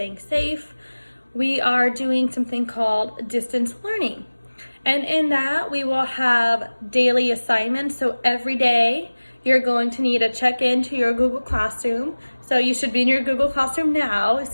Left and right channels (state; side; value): inverted; both; correlation -1.00